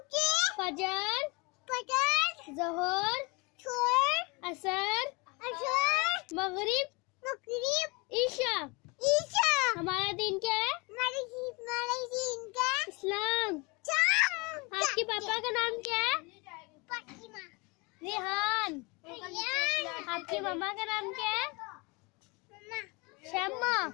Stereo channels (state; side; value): quieter; right; 27.9 dB